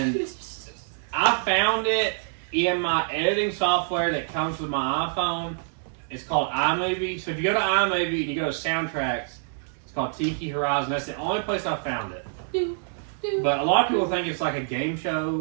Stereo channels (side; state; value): left; silent; digital silence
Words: I found it in my editing software that comes with my iPhone. It's called iMovie. So if you go to iMovie and you go to soundtracks, it's called Tiki Horizon. That's the only place I found it. But a lot of people think it's like a game